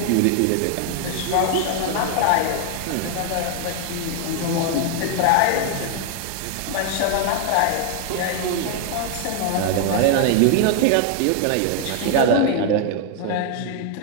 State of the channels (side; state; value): both; different; correlation 0.00